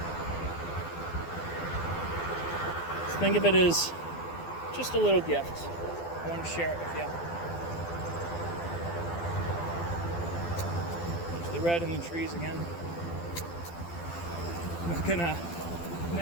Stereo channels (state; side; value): late; right; 12 ms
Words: So think of it as just a little gift. I want to share it with you. There's the red in the trees again. I'm not gonna